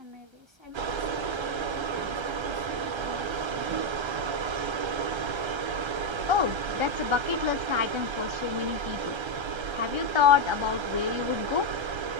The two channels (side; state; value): left; late; 1.3 ms